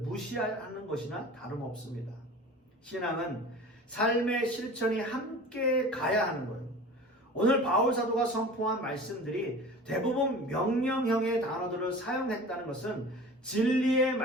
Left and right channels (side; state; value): both; normal; correlation 0.39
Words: 무시하는 것이나 다름없습니다. 신앙은 삶의 실천이 함께 가야 하는 거예요. 오늘 바울 사도가 선포한 말씀들이 대부분 명령형의 단어들을 사용했다는 것은 진리의